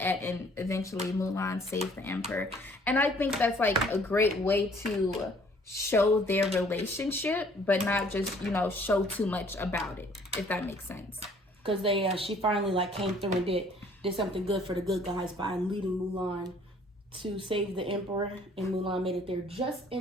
and eventually Mulan saves the emperor. And I think that's like a great way to show their relationship, but not just, you know, show too much about it, if that makes sense. Because she finally like came through and did something good for the good guys by leading Mulan to save the emperor, and Mulan made it there just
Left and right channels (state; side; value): normal; both; correlation 0.58